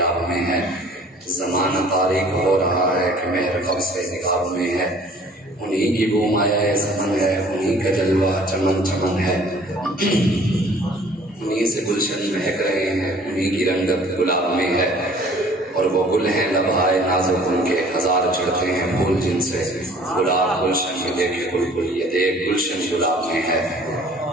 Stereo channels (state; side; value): normal; both; correlation 0.52